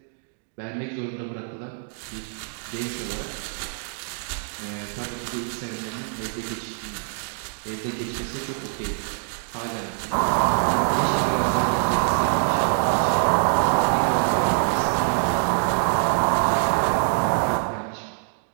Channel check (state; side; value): silent; left; 62 dB below the other